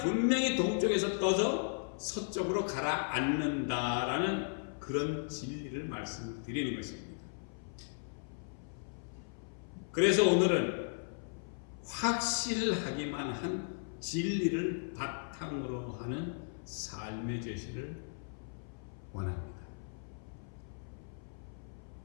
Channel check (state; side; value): silent; right; 54 dB below the other